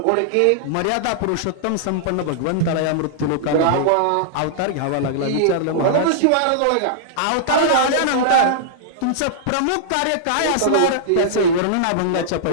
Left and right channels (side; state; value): both; different; correlation -0.02